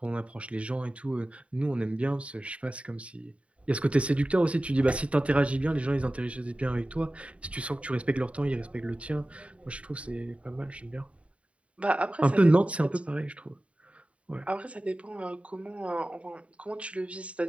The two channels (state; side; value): late; left; 0.063 ms